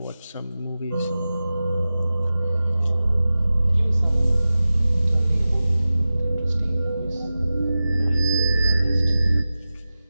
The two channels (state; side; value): inverted; both; correlation -0.95